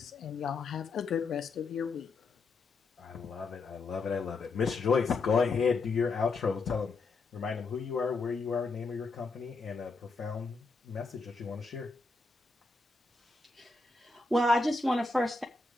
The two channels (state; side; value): quieter; right; 3.8 dB